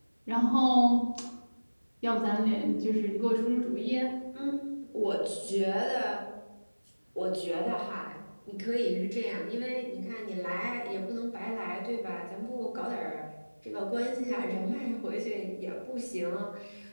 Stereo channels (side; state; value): both; inverted; correlation -1.00